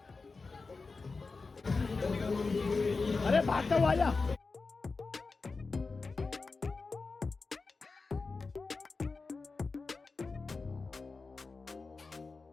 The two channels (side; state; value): right; quieter; 4.1 dB